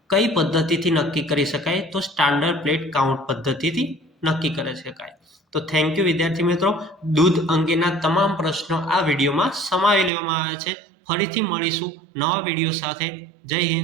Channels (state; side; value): drops out; left; at 10.1 s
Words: કઈ પદ્ધતિથી નક્કી કરી શકાય? તો સ્ટાન્ડર્ડ પ્લેટ કાઉન્ટ પદ્ધતિથી નક્કી કરી શકાય. તો થેન્ક યુ વિદ્યાર્થી મિત્રો. દૂધ અંગેના તમામ પ્રશ્નો આ વિડીયોમાં સમાવી લેવામાં આવ્યા છે. ફરીથી મળીશું નવા વિડીયો સાથે. જય